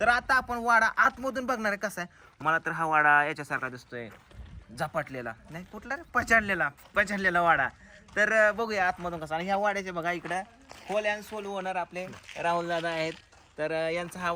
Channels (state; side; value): identical; both; correlation 1.00